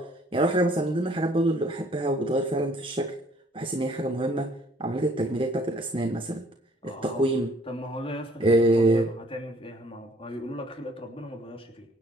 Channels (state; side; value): normal; both; correlation 0.59